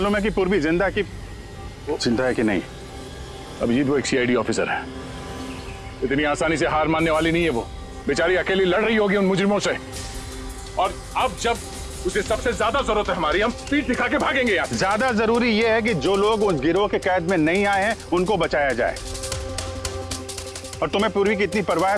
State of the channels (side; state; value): both; identical; correlation 1.00